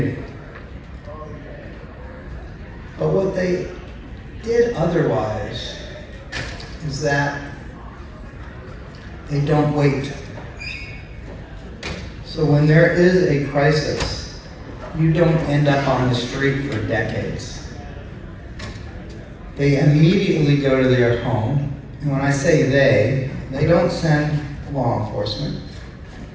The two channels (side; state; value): both; identical; correlation 1.00